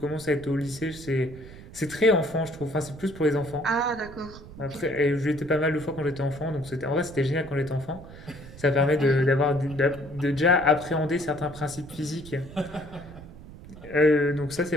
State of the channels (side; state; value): right; noise; rumble, 16 dB below the sound